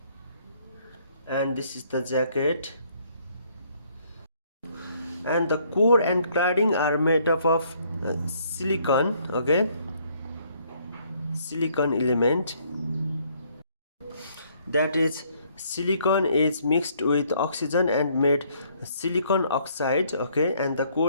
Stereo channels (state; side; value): inverted; both; correlation -0.66